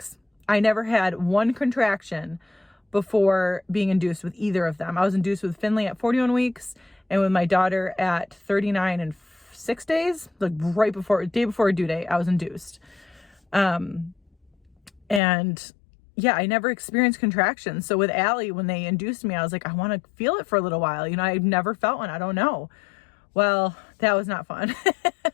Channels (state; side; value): drops out; right; at 15.2 s